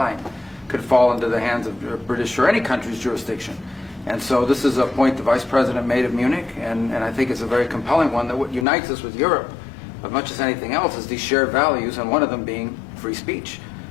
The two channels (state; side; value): drops out; right; at 8.7 s